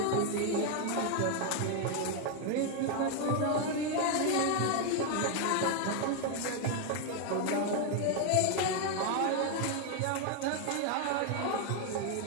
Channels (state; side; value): different; both; correlation 0.01